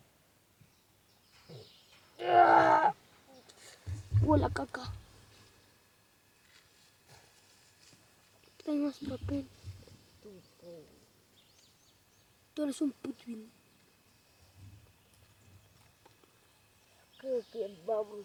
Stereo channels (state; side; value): identical; both; correlation 1.00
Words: Huele caca. Trae más papel. Tú eres un putín. Creo que